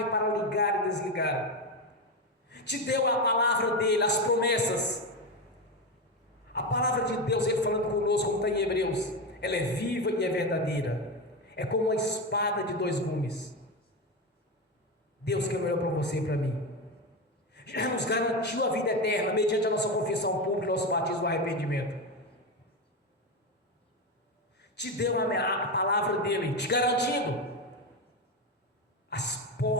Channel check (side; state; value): both; normal; correlation 0.15